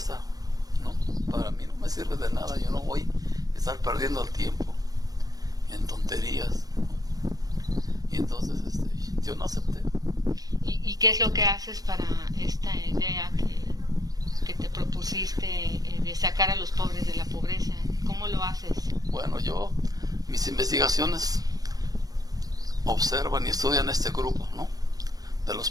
¿no? Para mí no me sirve de nada. Yo no voy a estar perdiendo el tiempo en tonterías, ¿no? Y entonces yo no acepté. ¿Y qué es lo que haces para esta idea que te propusiste de sacar a los pobres de la pobreza? ¿Cómo lo haces? Bueno, mis investigaciones observan y estudian este grupo, ¿no?, de los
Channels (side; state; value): left; late; 0.18 ms